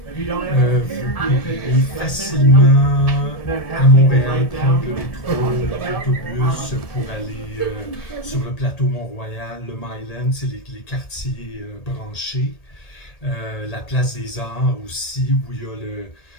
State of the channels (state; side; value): late; right; 1.7 ms